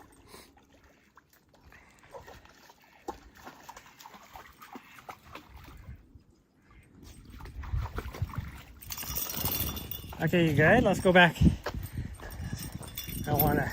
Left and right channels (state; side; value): identical; both; correlation 1.00